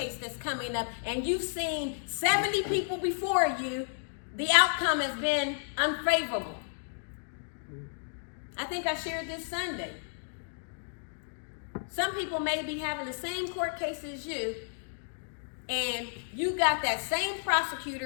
that's coming up, and you've seen 70 people before you. The outcome has been unfavorable. I think I shared this Sunday. Some people may be having the same court case as you, and you got that same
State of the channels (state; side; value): silent; right; digital silence